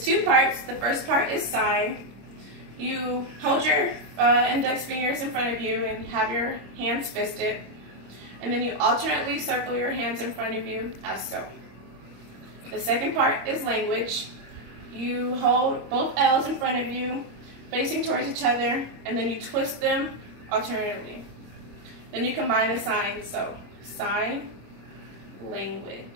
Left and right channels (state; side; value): late; left; 25 ms